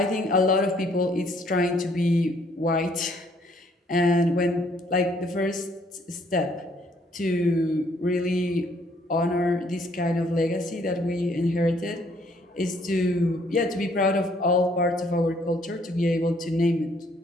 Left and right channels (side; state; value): both; normal; correlation 0.65